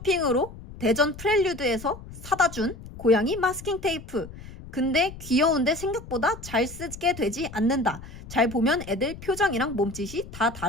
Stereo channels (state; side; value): noise; left; rumble, 15 dB below the sound